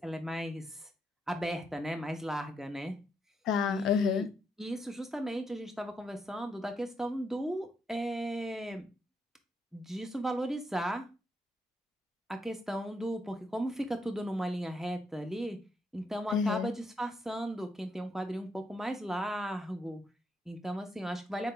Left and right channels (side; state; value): both; normal; correlation 0.78